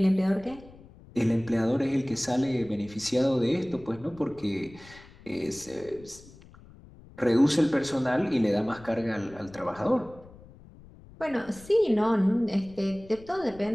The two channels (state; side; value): noise; left; rumble, 21 dB below the sound